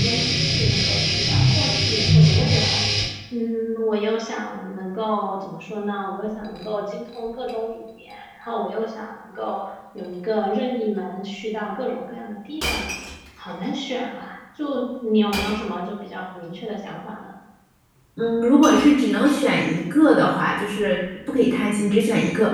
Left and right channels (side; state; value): both; identical; correlation 1.00